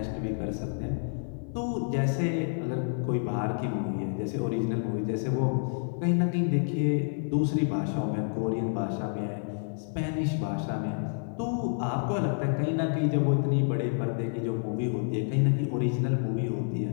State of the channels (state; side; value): silent; right; digital silence